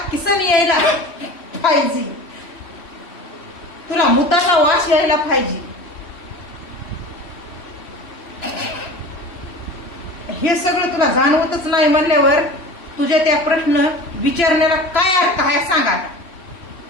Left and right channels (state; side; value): late; right; 3.1 ms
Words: किसन यायला पाहिजे, तुला मुताचा वास यायला पाहिजे. हे सगळं तुला जाणवतच नाही म्हणल्यावर तुझ्या त्या प्रश्न विचारण्याला काय अर्थ आहे सांगा.